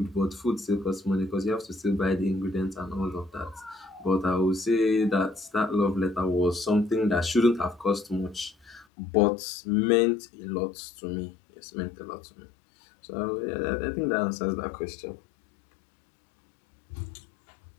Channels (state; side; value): drops out; right; at 8.8 s